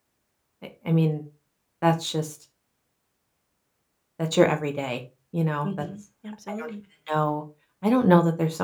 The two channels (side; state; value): both; identical; correlation 1.00